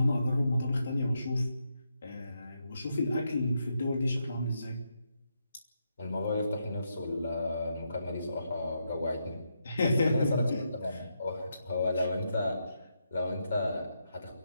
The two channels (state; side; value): inverted; both; correlation -0.82